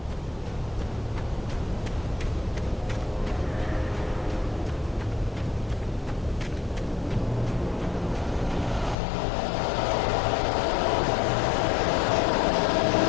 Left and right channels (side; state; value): right; drops out; at 9.0 s